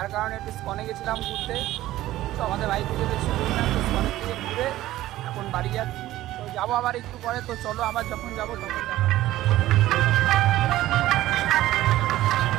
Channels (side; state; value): left; quieter; 15.2 dB